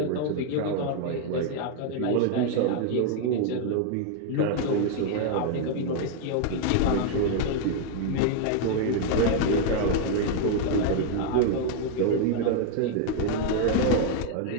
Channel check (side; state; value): both; different; correlation 0.00